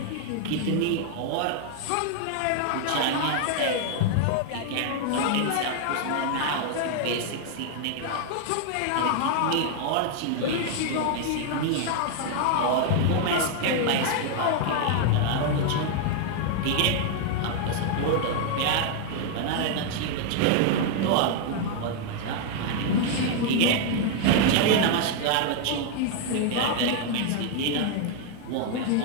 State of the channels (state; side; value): different; both; correlation 0.00